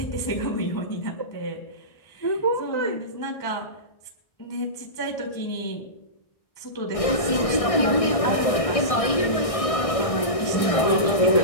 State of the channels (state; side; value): late; right; 1.6 ms